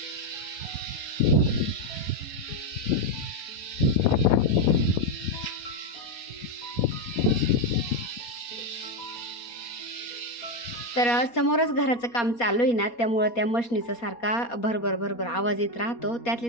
तर समोरच घराचं काम चालू आहे ना, त्यामुळं त्या मशनीचा सारखा भरभर भरभर आवाज येत राहतो,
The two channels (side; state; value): right; late; 4.2 ms